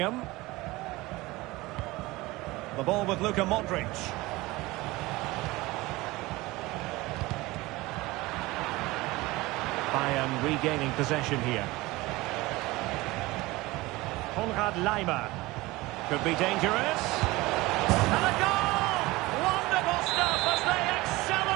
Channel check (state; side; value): quieter; left; 20.6 dB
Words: The ball with Luka Modric. Bayern regaining possession here. Konrad Laimer. Could be dangerous. And a goal! Wonderful stuff as they